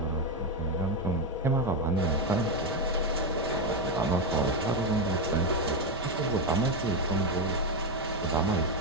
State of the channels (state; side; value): normal; both; correlation 0.08